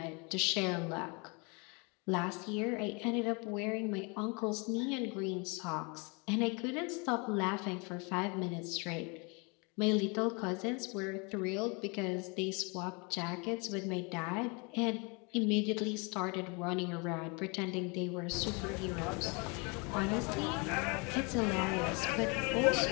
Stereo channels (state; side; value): quieter; right; 31.0 dB